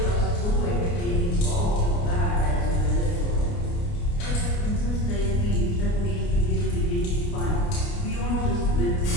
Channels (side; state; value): right; late; 29 ms